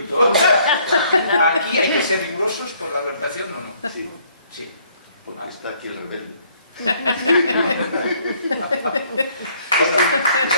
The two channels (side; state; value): both; inverted; correlation -0.64